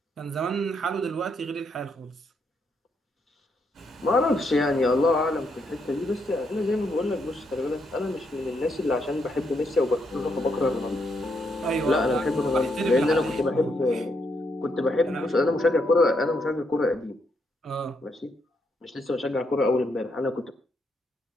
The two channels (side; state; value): both; normal; correlation 0.77